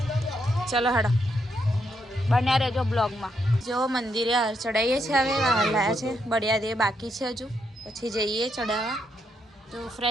ચલો હડો, બન્યા રહેજો બ્લોગમાં. જો મંદિરે હાર ચડાવીએ છીએ. હવે હાર લાયા છે, બળિયા દે બાકી છે હજુ, પછી જઈએ ચડાવવા. તો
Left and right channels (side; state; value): both; normal; correlation 0.78